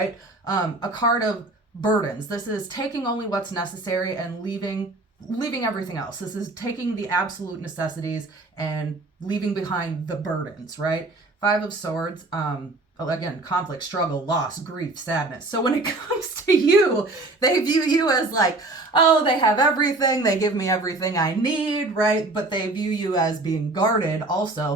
A card of burdens. This is taking only what's necessary and leaving everything else. This is taking the absolute necessities and leaving behind the burdens, right? Five of Swords, again, conflict, struggle, loss, grief, sadness. So when it comes to you, they view you as like, oh, they have everything, they give me everything I need, right? But they view you as being guarded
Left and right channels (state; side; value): quieter; left; 3.0 dB